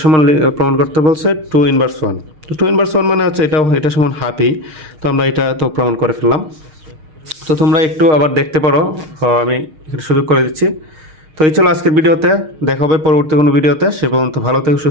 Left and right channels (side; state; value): left; late; 6.5 ms